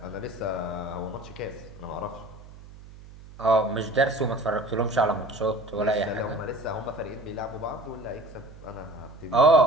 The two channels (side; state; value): right; noise; hum, 18 dB below the sound